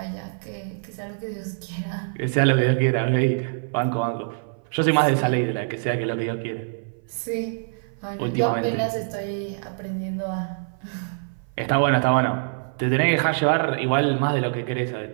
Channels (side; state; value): left; silent; 57 dB below the other